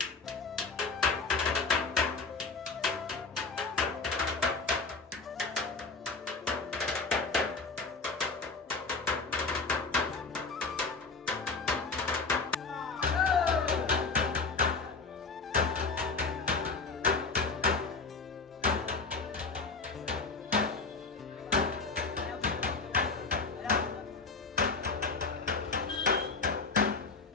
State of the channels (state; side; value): quieter; right; 4.3 dB